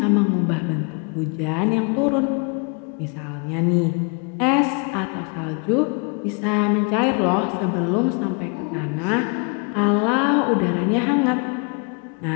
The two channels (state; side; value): quieter; right; 35.2 dB